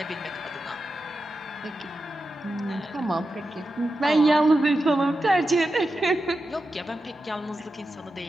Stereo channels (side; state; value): both; normal; correlation 0.90